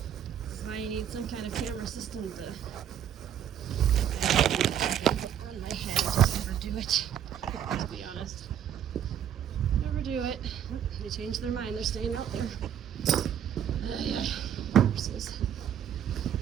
So I need some kind of camera system to on my head. Just never do it, to be honest. Never do it. They changed their mind. They're staying out there. Yeah. Horses.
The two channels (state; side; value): quieter; left; 9.5 dB